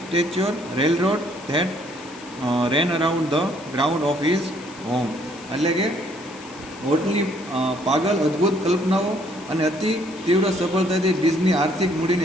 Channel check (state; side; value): noise; left; hiss, 21 dB below the sound